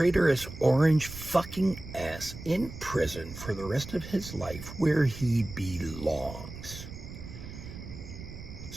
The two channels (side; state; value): right; noise; rumble, 12 dB below the sound